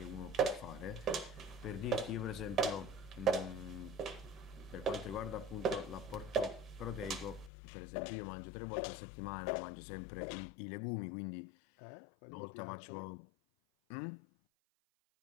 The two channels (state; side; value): drops out; right; at 7.5 s